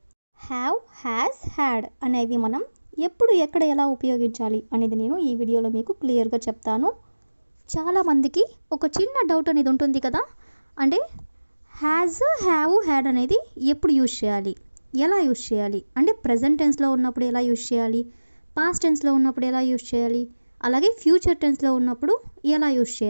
హ్యావ్, హ్యాస్, హ్యాడ్ అనేవి మనం ఎప్పుడు ఎక్కడ ఎలా ఉపయోగించాలి అనేది నేను ఈ వీడియోలో మీకు క్లియర్గా చెప్తాను. చాలామందికి ఒక చిన్న డౌట్ అనేది ఉంటుంది కదా, అంటే హ్యాజ్, హ్యావ్, హ్యాడ్ అనేది ఎప్పుడు యూజ్ చేయాలి, ఎలా యూజ్ చేయాలి, అంటే ప్రజెంట్ టెన్స్లో ఉన్నప్పుడు ఎలా యూజ్ చేయాలి, పాస్ట్ టెన్స్లో ఉన్నప్పుడు ఎలా యూజ్ చేయాలి, అలాగే ఫ్యూచర్ టెన్స్లో ఉన్నప్పుడు ఎలా యూజ్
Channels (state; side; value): inverted; both; correlation -1.00